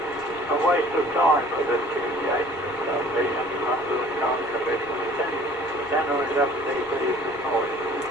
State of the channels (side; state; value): left; noise; rumble, 25 dB below the sound